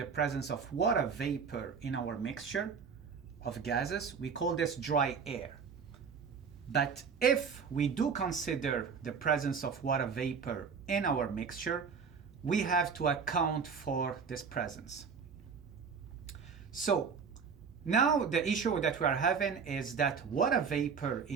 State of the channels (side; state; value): left; quieter; 6.0 dB